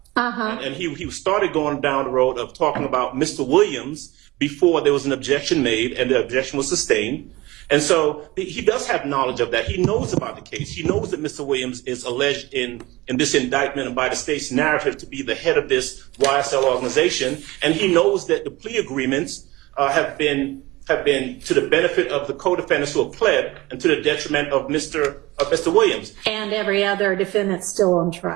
And he started going down the road of talking about Mr. Williams before there was an objection made and the objection was sustained. And so he does have knowledge of that. He knows about the case. He knows that Mr. Williams is alleged in this indictment and by the state's narrative to be the head of this YSL organization. And he knows that the plea agreements have been to the benefit of the co-defendants who have pled and to the detriment of Mr. Williams. And every other defendant still on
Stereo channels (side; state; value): left; quieter; 20.1 dB